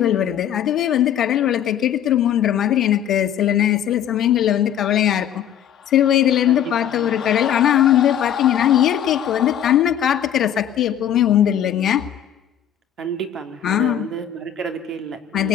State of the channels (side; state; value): right; quieter; 10.0 dB